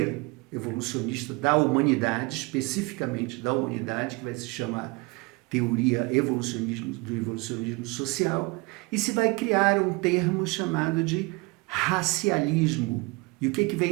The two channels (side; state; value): left; quieter; 26.1 dB